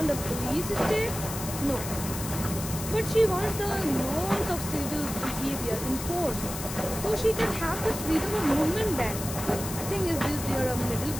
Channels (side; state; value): left; noise; hiss, 8 dB below the sound